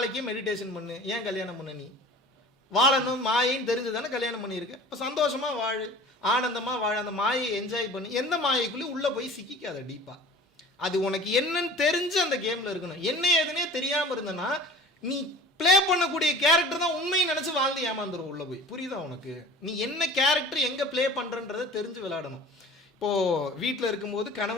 மெடிடேஷன் பண்ணு. ஏன் கல்யாணம் பண்ண? நீ வாழணும் மாயைன்னு தெரிஞ்சு தானே கல்யாணம் பண்ணியிருக்கு. இப்போ சந்தோஷமா வாழு, ஆனந்தமா வாழ, அந்த மாயை என்ஜாய் பண்ணு. எந்த மாயைக்குள்ளே உள்ளே போய் சிக்கிக்காத டீப்பா. அது உனக்கு என்னன்னு தெரிஞ்சு அந்த கேமில் இருக்கணும். என்ன ஏதுனே தெரியாமல் இருந்தனா நீ ப்ளே பண்ணக்கூடிய கேரக்டர் தான் உண்மையை நினச்சி வாழ்ந்து ஏமாந்துடும் உள்ளே போய். புரியுதா உனக்கு? நீ என்ன கேரக்டர் எங்கே ப்ளே பண்ணுறன்றதை தெரிஞ்சு விளையாடணும். இப்போது வீட்டில் இருக்கும்போது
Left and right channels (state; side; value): normal; both; correlation 0.42